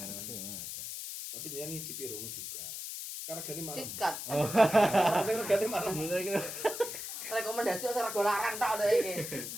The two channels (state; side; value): noise; left; hiss, 7 dB below the sound